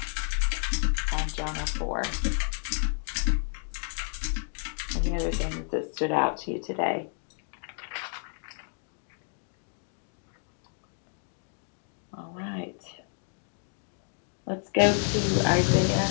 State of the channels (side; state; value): right; silent; 58 dB below the other